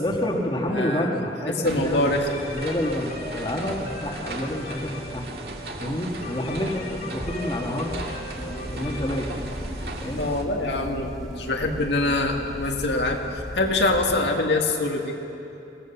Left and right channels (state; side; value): normal; both; correlation 0.34